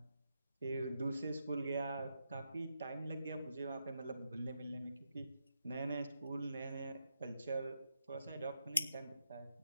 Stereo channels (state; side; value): inverted; both; correlation -0.84